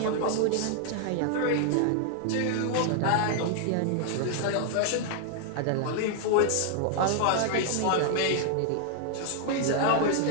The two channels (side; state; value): both; different; correlation 0.00